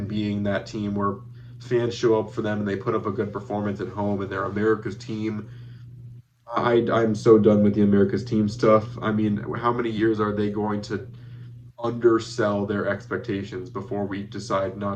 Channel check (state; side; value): identical; both; correlation 1.00